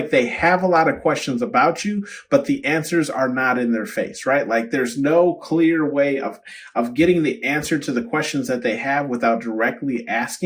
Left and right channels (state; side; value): identical; both; correlation 1.00